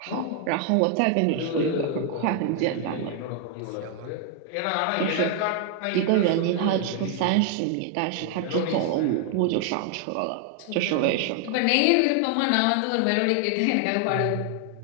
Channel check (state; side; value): different; both; correlation 0.00